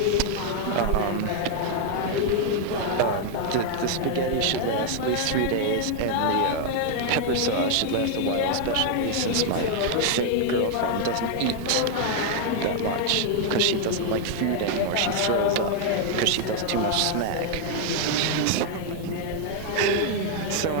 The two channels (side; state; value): both; different; correlation 0.00